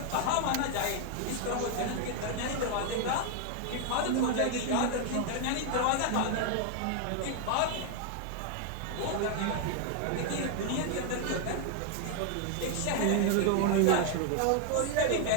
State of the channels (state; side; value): different; both; correlation 0.00